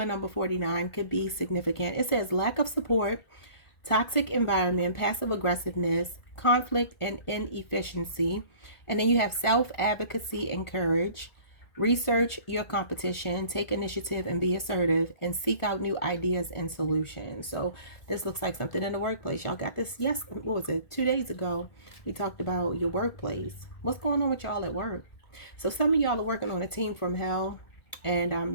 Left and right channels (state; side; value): late; right; 1.4 ms